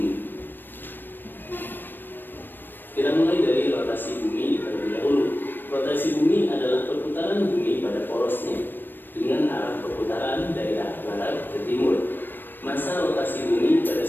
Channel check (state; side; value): late; right; 0.094 ms